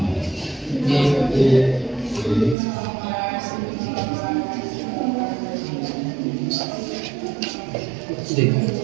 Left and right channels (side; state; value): left; drops out; at 2.6 s